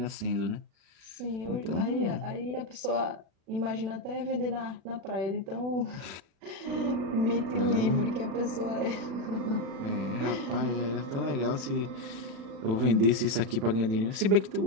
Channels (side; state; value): left; late; 36 ms